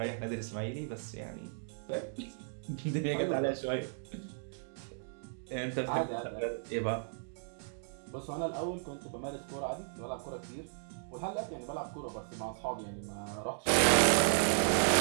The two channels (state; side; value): silent; left; digital silence